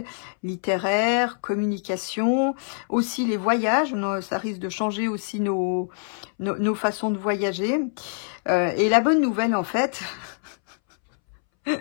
littéraire, communication. Aussi les voyages, ça risque de changer aussi nos façons de voyager. Et la bonne nouvelle, en fait,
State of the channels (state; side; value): silent; right; 62 dB below the other